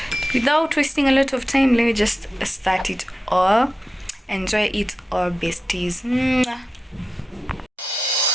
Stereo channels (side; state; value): both; normal; correlation 0.92